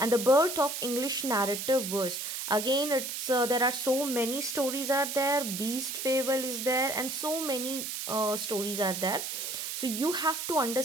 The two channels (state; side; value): noise; right; hiss, 4 dB below the sound